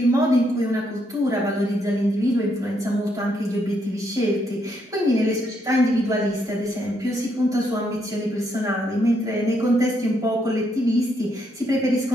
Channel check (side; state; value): both; normal; correlation 0.75